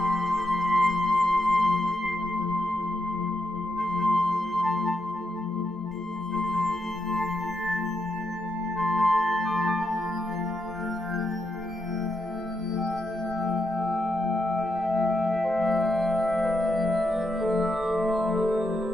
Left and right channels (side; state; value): both; normal; correlation 0.82